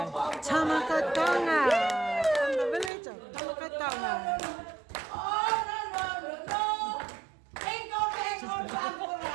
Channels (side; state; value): left; drops out; at 2.9 s